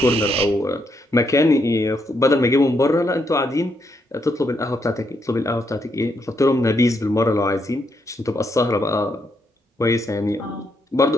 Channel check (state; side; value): normal; both; correlation 0.78